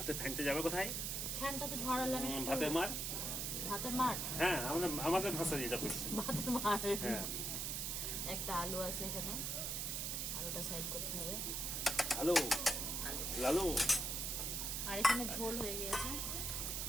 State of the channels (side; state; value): right; noise; hiss, 1 dB below the sound